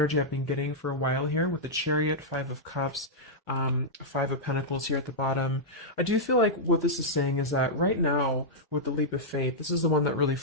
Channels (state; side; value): normal; both; correlation -0.08